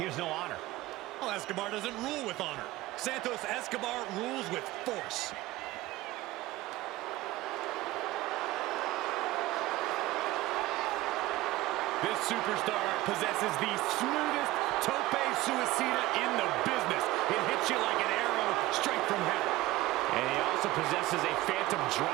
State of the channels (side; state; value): left; quieter; 17.7 dB